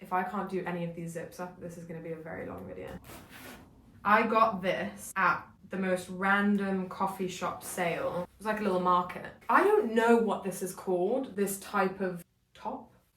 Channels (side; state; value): both; identical; correlation 1.00